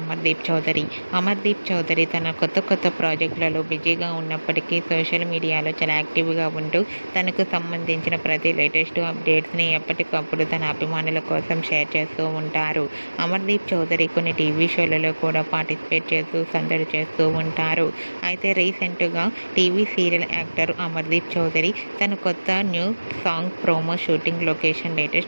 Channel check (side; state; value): both; inverted; correlation -1.00